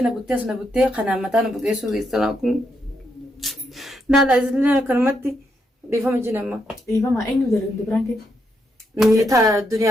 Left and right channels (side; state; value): both; normal; correlation 0.79